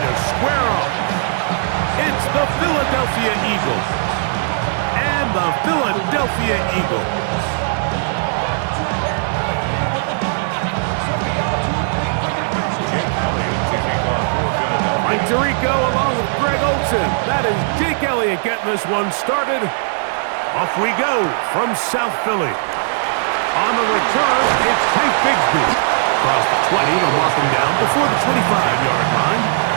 square up. It's the Philadelphia Eagles and the Philadelphia Eagles. Mike Tirico along with Greg Olson. That is Jake Elliott getting this one started. Off we go from South Philly. On the return, it's Tank Bigsby. Across the 20, they'll mark him down before the 25-yard line.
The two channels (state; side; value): silent; left; digital silence